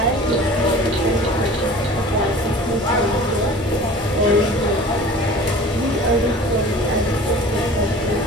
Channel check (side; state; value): both; normal; correlation 0.43